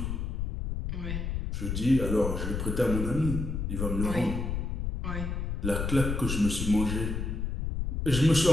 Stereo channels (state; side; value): noise; left; rumble, 2 dB below the sound